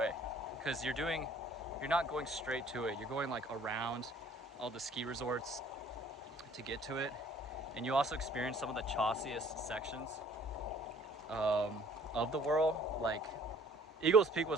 because you're not going straight to it. You're going like around all the ski resorts to get to it. And you also experience some of the chossiest sections of the WURL. Like, Eagles Peak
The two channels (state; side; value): normal; both; correlation 0.55